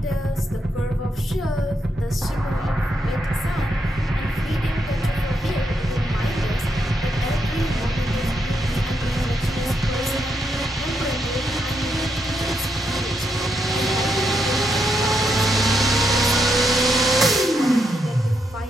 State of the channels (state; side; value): normal; both; correlation 0.80